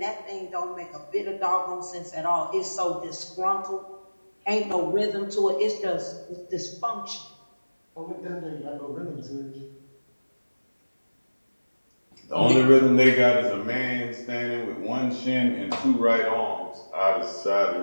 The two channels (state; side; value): inverted; both; correlation -1.00